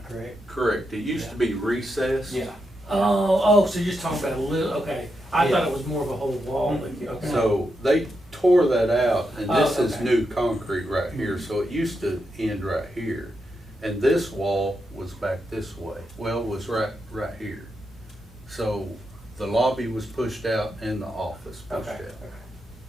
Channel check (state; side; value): normal; both; correlation 0.84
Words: correct? Correct. It used to be recessed. Yeah. Oh, so you're just talking about a little, okay. I Yeah. thought it was more of a whole wall, but, okay. So they tore that out, and this Oh, is okay. new concrete right here, so it used to end right here. And this wall was back this way, well, was right here. So the lobby was pushed out and the office pushed Okay, out. okay.